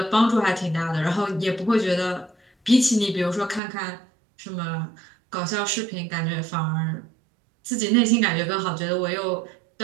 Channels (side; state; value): left; drops out; at 3.6 s